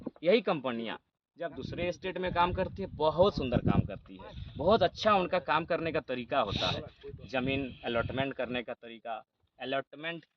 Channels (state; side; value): identical; both; correlation 1.00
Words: यही कंपनियां जब दूसरे स्टेट में काम करती है बहुत सुंदर काम करती है, बहुत अच्छा उनका काम करने का तरीका होता है। ज़मीन अलॉटमेंट करने का तरीका, अलॉटमेंट